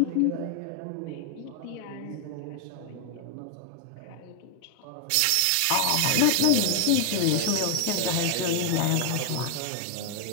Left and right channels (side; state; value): both; different; correlation 0.01